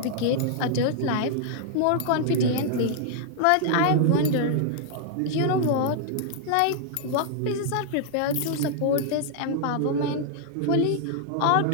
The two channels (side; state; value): both; different; correlation -0.01